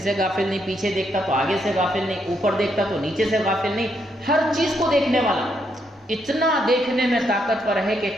سے غافل نہیں، پیچھے دیکھتا تو آگے سے غافل نہیں، اوپر دیکھتا تو نیچے سے غافل نہیں، ہر چیز کو دیکھنے والا. اتنا دیکھنے میں طاقتور ہے کہ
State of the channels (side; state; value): both; normal; correlation 0.77